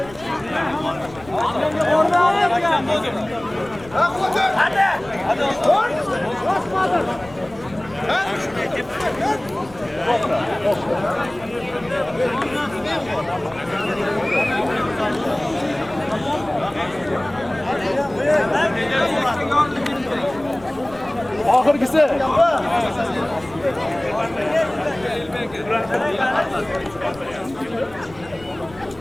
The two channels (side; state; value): left; noise; rumble, 21 dB below the sound